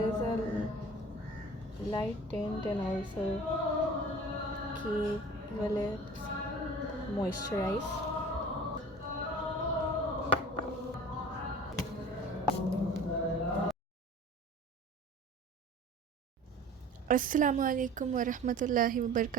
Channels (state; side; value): normal; both; correlation 0.42